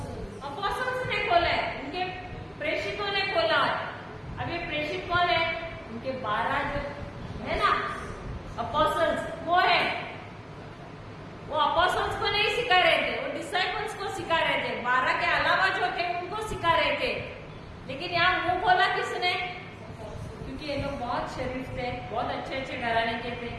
अपोस्टल्स ने खोला है, उनके प्रेषितों ने खोला है। अब ये प्रेषित कौन है? उनके 12 जो है ना अपोस्टल्स, वो है। वो अपोस्टल्स को नहीं सिखा रहे थे, वो डिसाइपल्स को सिखा रहे थे। 12 के अलावा जो थे उनको सिखा रहे थे। लेकिन यहाँ मुंह खोला किसने? क्योंकि ये लोग बहुत शरीफ थे, बहुत अच्छे अच्छे घराने के थे,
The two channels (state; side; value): identical; both; correlation 1.00